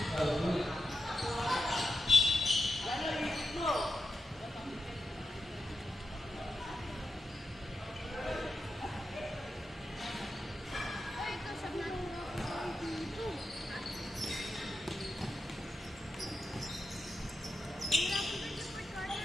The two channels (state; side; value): normal; both; correlation 0.88